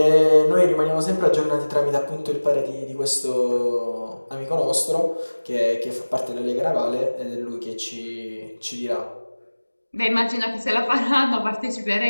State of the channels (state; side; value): inverted; both; correlation -1.00